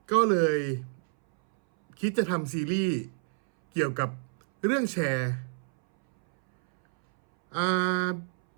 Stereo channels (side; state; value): left; silent; 59 dB below the other